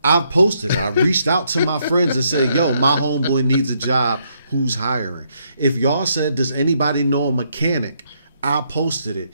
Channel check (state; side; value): inverted; both; correlation -0.74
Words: I've posted it. I reached out to my friends and said, yo, my homeboy needs a job, who's hiring? If y'all said, does anybody know a mechanic? I posted it.